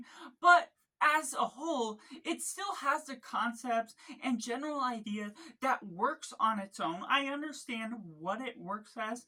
but as a whole, it still has the concepts and general idea that works on its own. I understand what it works as,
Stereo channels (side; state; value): both; identical; correlation 1.00